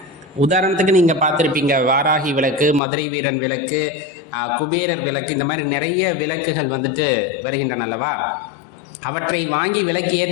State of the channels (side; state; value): right; drops out; at 2.8 s